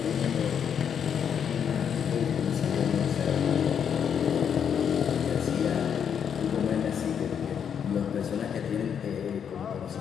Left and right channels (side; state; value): right; quieter; 7.9 dB